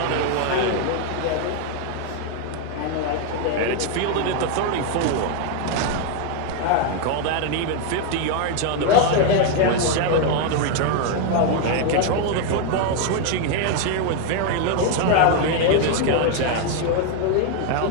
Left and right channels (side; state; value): both; different; correlation 0.01